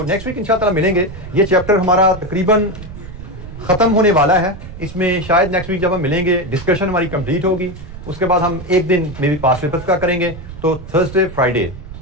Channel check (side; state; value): right; noise; rumble, 13 dB below the sound